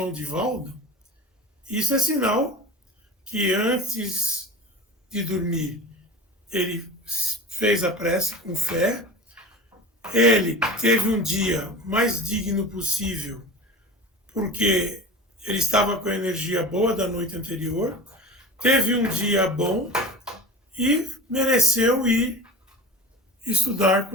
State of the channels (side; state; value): both; normal; correlation 0.34